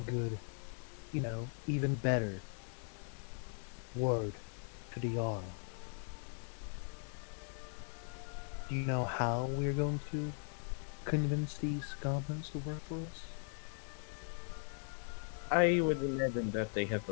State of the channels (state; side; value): silent; right; 52 dB below the other